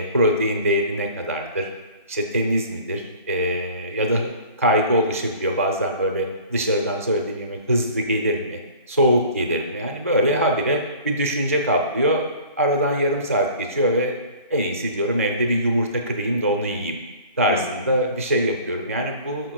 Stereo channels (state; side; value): inverted; both; correlation -0.46